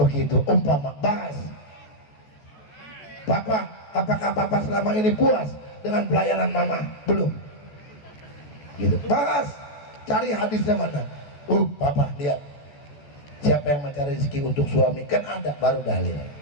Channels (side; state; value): right; late; 14 ms